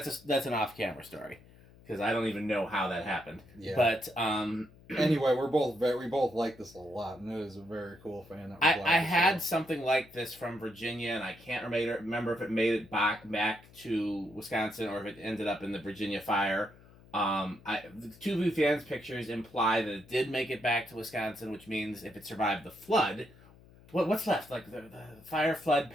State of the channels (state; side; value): noise; left; hum, 24 dB below the sound